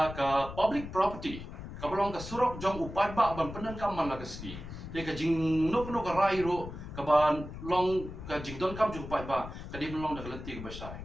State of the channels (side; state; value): left; noise; rumble, 10 dB below the sound